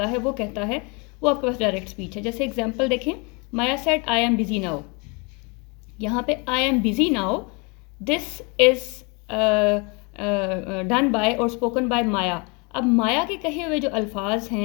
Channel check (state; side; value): quieter; right; 30.8 dB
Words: है, वो कहता है, वो आपके पास डायरेक्ट स्पीच है. जैसे एग्जांपल देखें, Maya said I am busy now. यहाँ पे I am busy now, this is done by और स्पोकन बाय माया. अब माया के कहे हुए जो अल्फाज